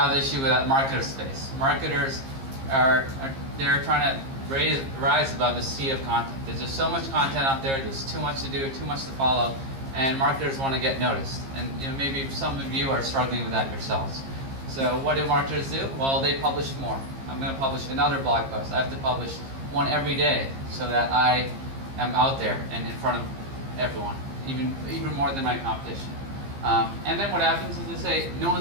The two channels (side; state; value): left; late; 15 ms